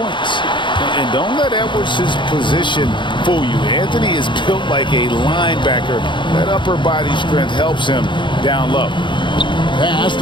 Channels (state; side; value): late; right; 0.23 ms